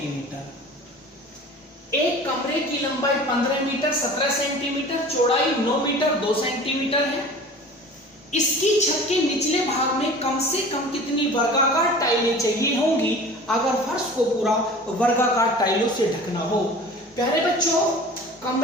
एक कमरे की लंबाई 15 मीटर 17 सेंटीमीटर, चौड़ाई 9 मीटर 2 सेंटीमीटर है। इसकी छत के निचले भाग में कम से कम कितनी वर्गाकार टाइलें चाहिए होंगी अगर फर्श को पूरा वर्गाकार टाइलों से ढकना हो। प्यारे बच्चों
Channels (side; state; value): both; normal; correlation 0.41